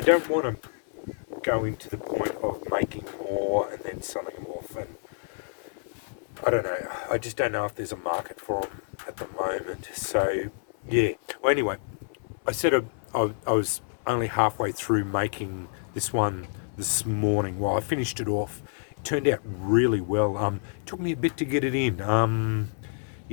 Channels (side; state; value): right; silent; 59 dB below the other